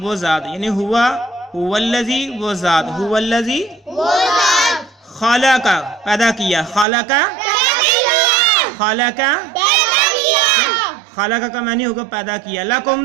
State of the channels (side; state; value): left; drops out; at 6.9 s